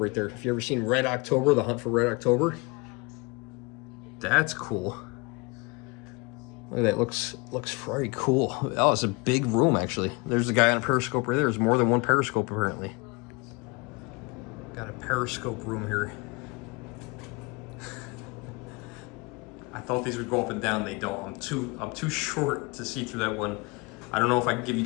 there. If you ever seen Red October, The Hunt for Red October. That's cool. Look at that, looks very cool. Oh, it's a big room actually. There's a guy on a periscope right there. There's more than 1 periscope apparently. Got a periscope room here. I thought these would go up and down, they don't. I'm too short to see through that one. I don't know if I can give you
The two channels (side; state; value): right; quieter; 27.6 dB